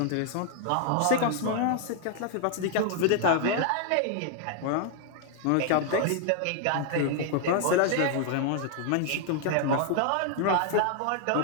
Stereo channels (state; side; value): different; both; correlation 0.00